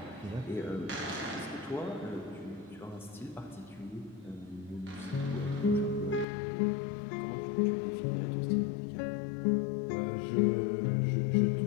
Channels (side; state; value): right; drops out; at 6.2 s